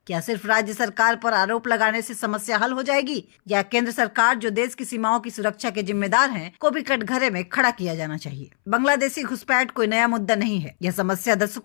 क्या सिर्फ राज्य सरकार पर आरोप लगाने से समस्या हल हो जाएगी, या केंद्र सरकार जो देश की सीमाओं की सुरक्षा के जिम्मेदार है को भी कटघरे में खड़ा किया जाना चाहिए? बांग्लादेशी घुसपैठ कोई नया मुद्दा नहीं है। यह समस्या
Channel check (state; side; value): silent; right; 64 dB below the other